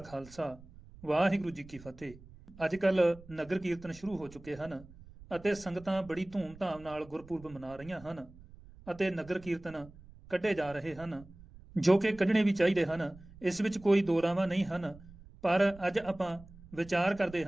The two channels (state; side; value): noise; right; rumble, 20 dB below the sound